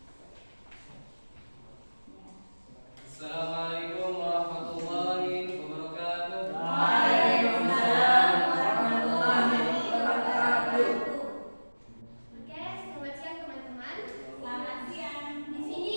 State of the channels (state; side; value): inverted; both; correlation -1.00